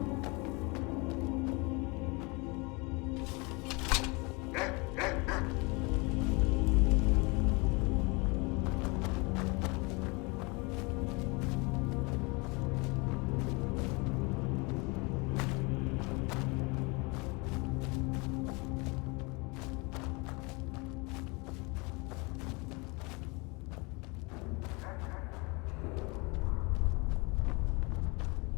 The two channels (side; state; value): right; quieter; 28.1 dB